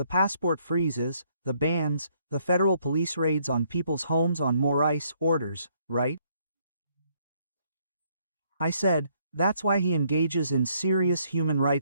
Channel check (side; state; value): both; inverted; correlation -0.69